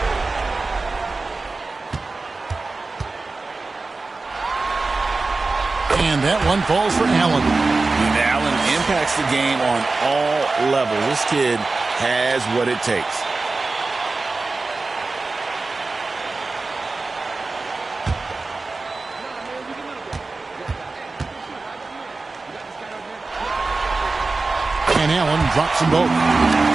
And that one falls for Allen. And Allen impacts the game on all levels. This kid has what it takes. And Allen drops them both.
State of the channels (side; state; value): left; quieter; 3.7 dB